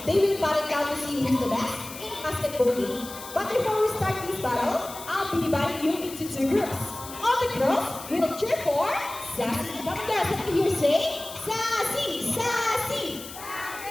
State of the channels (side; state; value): left; noise; hiss, 13 dB below the sound